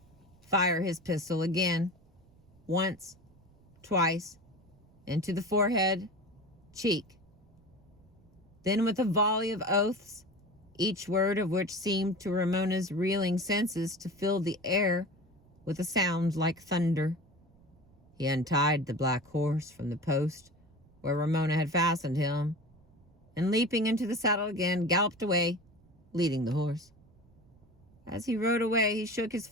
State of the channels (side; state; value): right; noise; rumble, 29 dB below the sound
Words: fire his pistol again, once, twice, into the forehead, cheek. Then with a volley of oaths, each word of which seemed to Ramona's reeling senses to fill the air with a sound like thunder, he untied the black horse from the post where Ramona had fastened him, and leaping into the saddle again, galloped away, leading the horse. As he rode away, he shook his